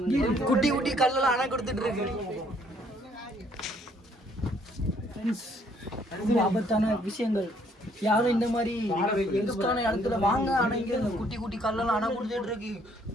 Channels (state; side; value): normal; both; correlation 0.65